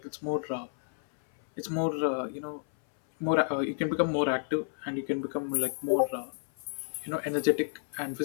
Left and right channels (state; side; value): silent; right; 57 dB below the other